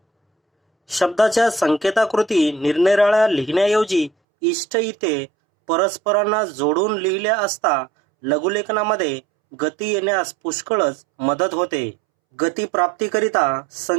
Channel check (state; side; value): drops out; left; at 4.1 s